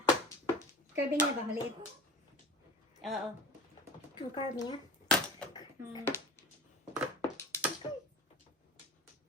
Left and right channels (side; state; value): both; normal; correlation 0.34